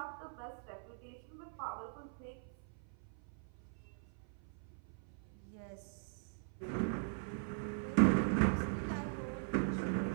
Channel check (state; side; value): silent; left; 50 dB below the other